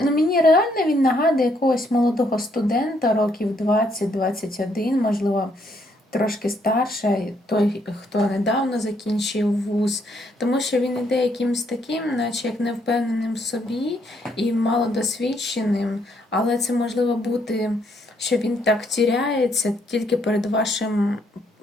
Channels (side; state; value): both; normal; correlation 0.72